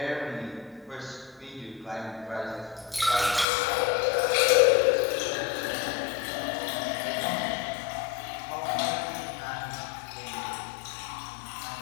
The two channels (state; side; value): drops out; right; at 3.5 s